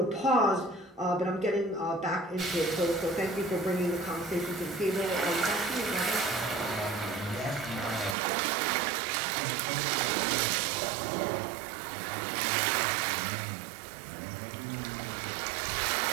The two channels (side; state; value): left; drops out; at 8.2 s